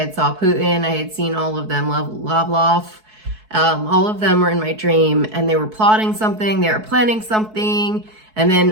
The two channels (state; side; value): late; left; 4.6 ms